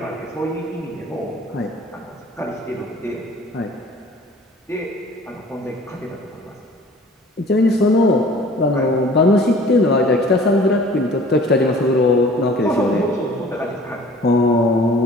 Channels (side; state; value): both; normal; correlation 0.49